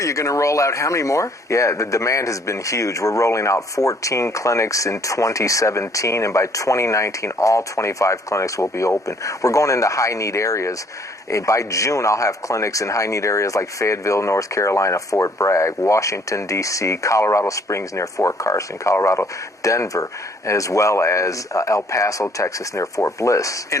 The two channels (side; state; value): both; normal; correlation 0.62